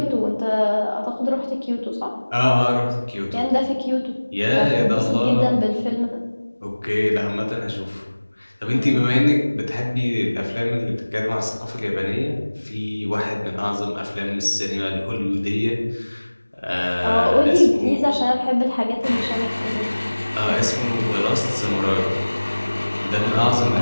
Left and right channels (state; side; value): inverted; both; correlation -1.00